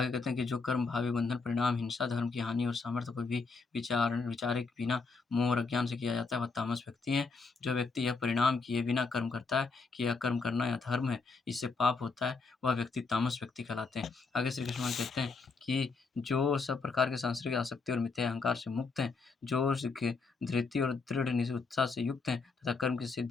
कहते हैं कि जो कर्म भावी बंधन परिणाम हिंसा, धर्म की हानि और सामर्थ्य को भी विचारे के बिना मोह और अज्ञान से किया जाता है, वह तामस व्यक्ति है। जो व्यक्ति यह परिणाम किए बिना कर्म करता है कि यह कर्म करना यह धर्म है, इससे पाप होता है, वह व्यक्ति तामस व्यक्ति कहलाते हैं। आगे श्री कृष्ण भगवान कहते हैं कि जो सब प्रकार के सांसारिक आसक्ति और मिथ्या अहंकार से मुक्त हैं, जो धृति और दृढ़ उत्साह से युक्त हैं तथा कर्म की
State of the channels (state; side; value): quieter; right; 4.3 dB